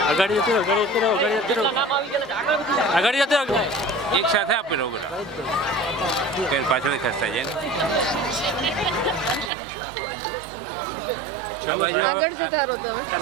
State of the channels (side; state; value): left; drops out; at 9.5 s